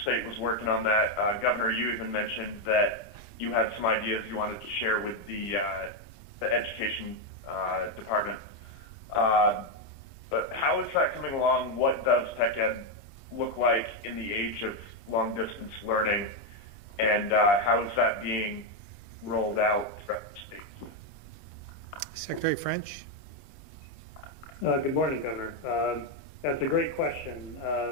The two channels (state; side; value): late; right; 27 ms